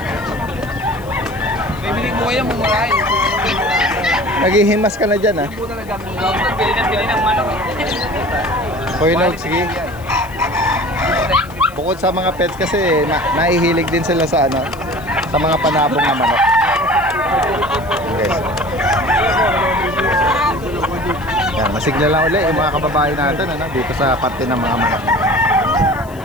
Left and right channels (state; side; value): noise; left; hiss, 23 dB below the sound